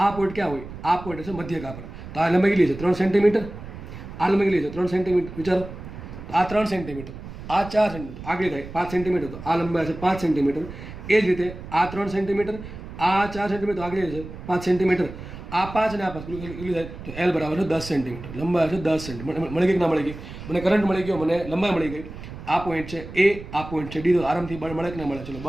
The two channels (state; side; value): noise; right; rumble, 12 dB below the sound